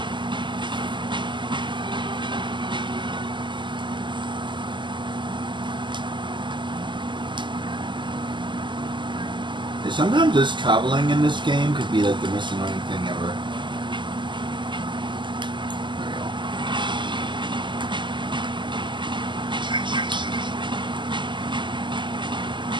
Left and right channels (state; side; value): late; left; 0.23 ms